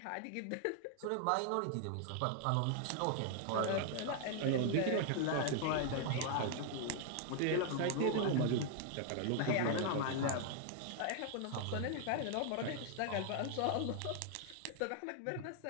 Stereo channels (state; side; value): different; both; correlation 0.00